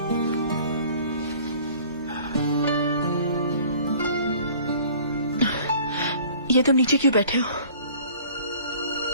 ये तुम नीचे क्यों बैठे हो?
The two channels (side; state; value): both; inverted; correlation -0.50